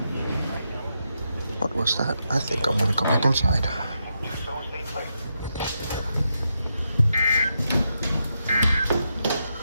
What was that? I think I'm gonna go back inside. Do so safely.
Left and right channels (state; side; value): inverted; both; correlation -0.84